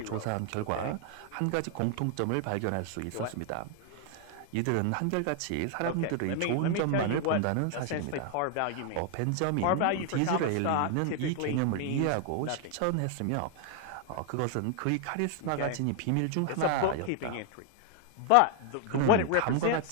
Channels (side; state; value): both; different; correlation 0.00